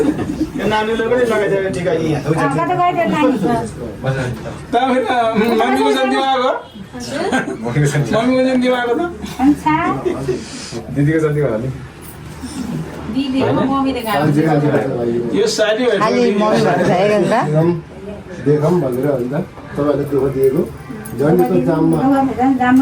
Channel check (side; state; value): both; identical; correlation 1.00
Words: नानीले पनि लगाइदिएर ठिक मम्मीको जन्ती आएको मम्मीको जन्ती आएको त दिदीको जन्ती होला नि यो साडी देखौँ भनेर अन्त तपाईँहरूले दुःख दिएको जन्तीको जाममा